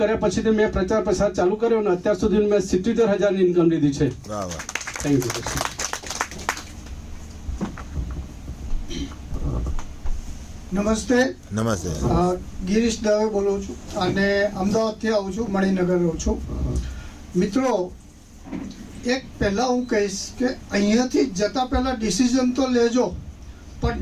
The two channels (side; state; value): both; identical; correlation 1.00